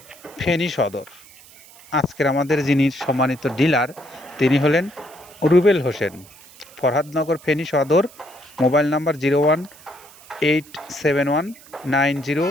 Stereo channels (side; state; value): right; noise; hiss, 23 dB below the sound